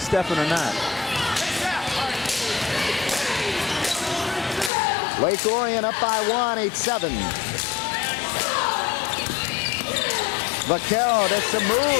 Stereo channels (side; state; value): right; drops out; at 4.7 s